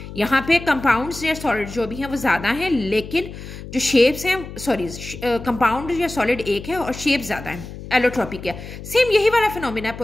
यहाँ पे कंपाउंड्स या सॉलिड जो भी हैं वो ज्यादा हैं, लेकिन जो शेप्स हैं कंपाउंड या सॉलिड एक है और शेप ज्यादा है। एलोट्रोपी क्या? सेम यही वाला फिनोमिना है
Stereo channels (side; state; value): left; noise; hum, 12 dB below the sound